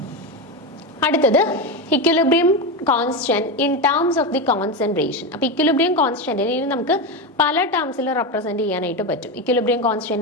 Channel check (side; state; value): both; normal; correlation 0.15